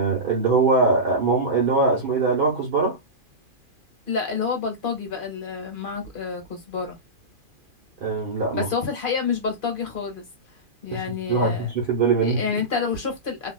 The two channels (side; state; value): left; late; 2.4 ms